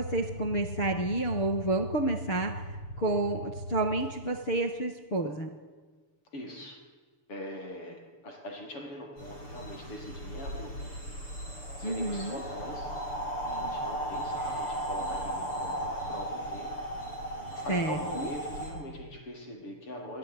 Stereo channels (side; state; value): right; late; 6.9 ms